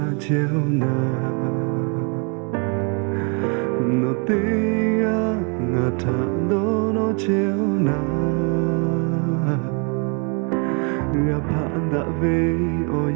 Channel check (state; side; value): quieter; left; 36.9 dB